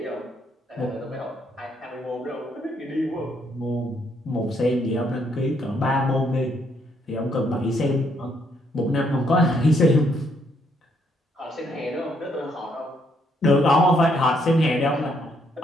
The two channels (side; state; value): both; normal; correlation 0.72